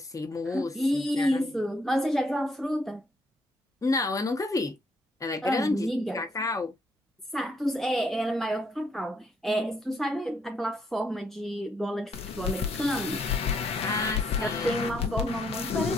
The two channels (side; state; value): both; normal; correlation 0.72